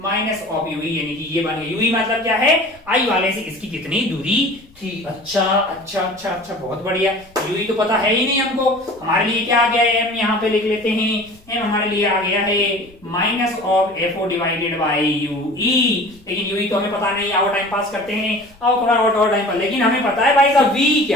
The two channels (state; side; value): noise; left; rumble, 28 dB below the sound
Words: of UE, यानी कि ये बन गया, यूई मतलब क्या है, आई वाले से इसकी कितनी दूरी थी। अच्छा, बहुत बढ़िया। यूई तो पता है ही नहीं हमको, हमारे लिए क्या आ गया है, एम यहाँ पे लिख लेते हैं, एम हमारे लिए आ गया है minus of FO divided by UE, लेकिन यूई तो हमें पता नहीं, आओ टाइम पास करते हैं, आओ थोड़ा और टाइम पर, लेकिन हमें पता है भाई साहब वी